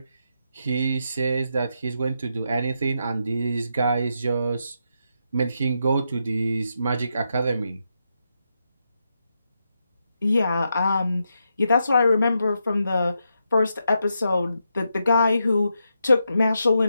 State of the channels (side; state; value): both; inverted; correlation -0.83